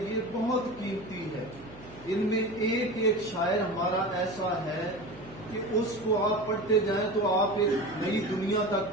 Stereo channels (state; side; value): noise; right; hum, 20 dB below the sound